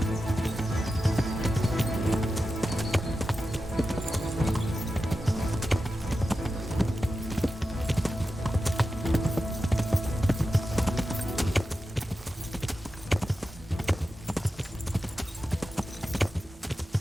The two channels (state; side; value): normal; both; correlation 0.92